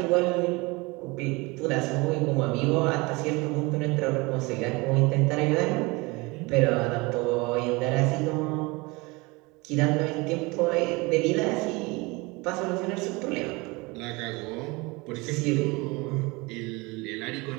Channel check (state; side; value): quieter; left; 25.1 dB